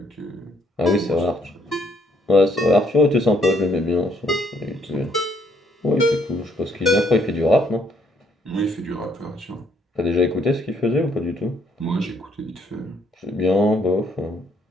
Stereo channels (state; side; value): normal; both; correlation 0.69